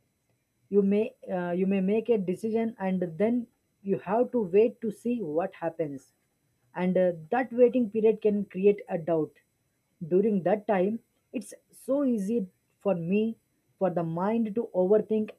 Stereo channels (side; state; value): both; identical; correlation 1.00